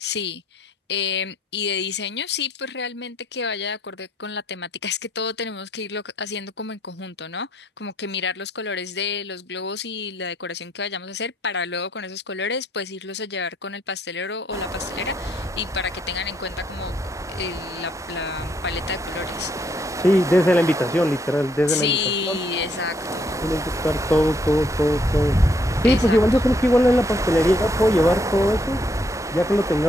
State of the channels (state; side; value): normal; both; correlation 0.71